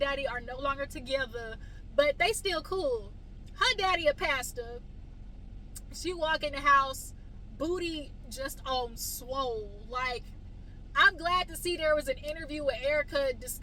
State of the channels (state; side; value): identical; both; correlation 1.00